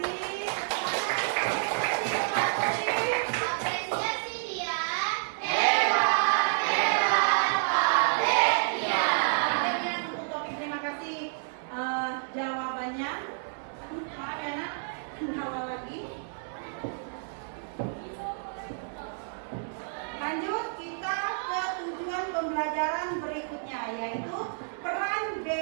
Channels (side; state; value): left; silent; digital silence